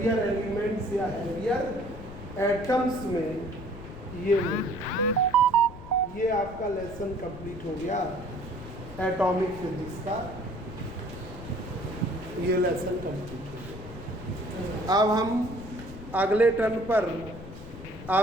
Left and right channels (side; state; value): left; noise; rumble, 13 dB below the sound